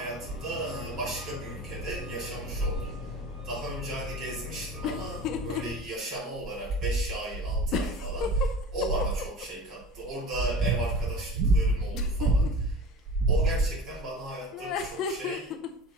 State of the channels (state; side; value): normal; both; correlation 0.37